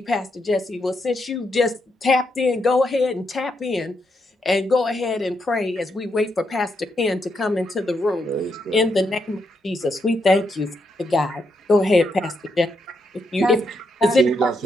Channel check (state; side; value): normal; both; correlation 0.80